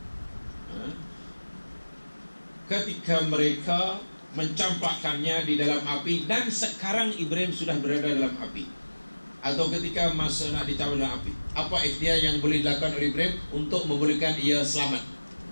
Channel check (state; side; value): inverted; both; correlation -1.00